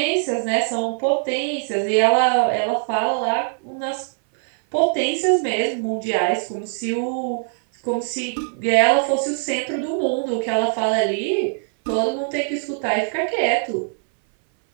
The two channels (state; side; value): silent; left; 60 dB below the other